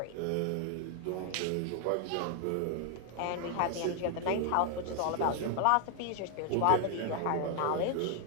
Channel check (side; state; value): both; different; correlation 0.00